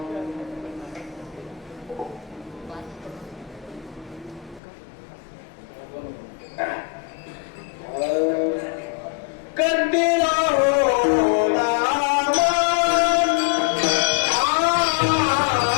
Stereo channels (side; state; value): right; drops out; at 4.6 s